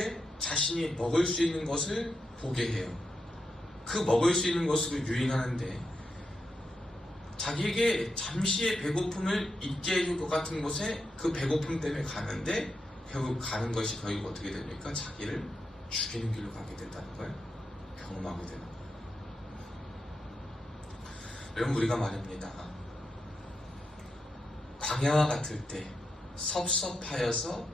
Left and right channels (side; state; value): both; normal; correlation 0.85